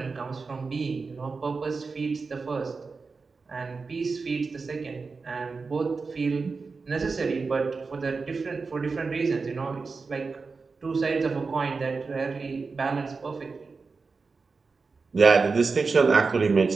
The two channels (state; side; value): quieter; left; 4.4 dB